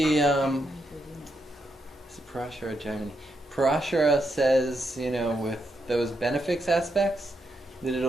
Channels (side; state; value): both; normal; correlation 0.81